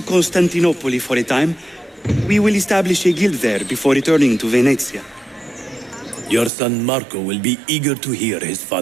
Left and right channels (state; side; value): drops out; left; at 6.5 s